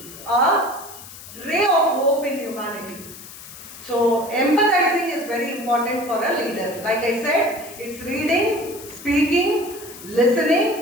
a ray of hope in humanity. So empathizing is very important for a leader. Like I said, it's reading, speaking,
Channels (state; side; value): noise; left; hiss, 15 dB below the sound